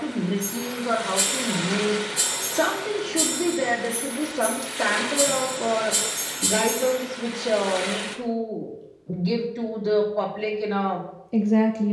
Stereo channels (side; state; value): both; identical; correlation 1.00